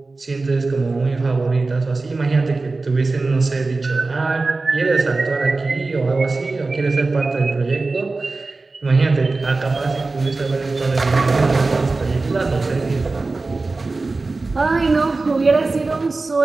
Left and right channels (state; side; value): quieter; left; 3.6 dB